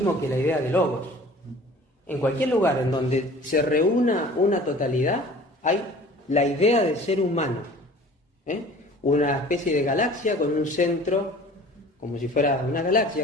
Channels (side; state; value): both; normal; correlation 0.46